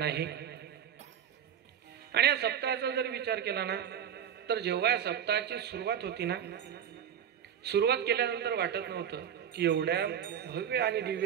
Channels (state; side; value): quieter; left; 9.0 dB